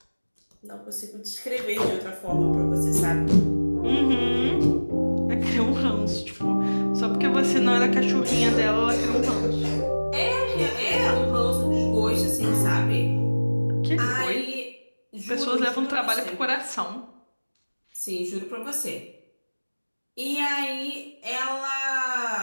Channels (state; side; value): inverted; both; correlation -1.00